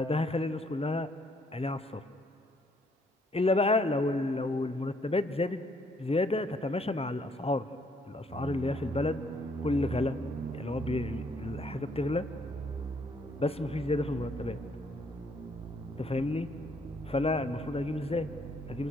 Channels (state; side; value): normal; both; correlation 0.67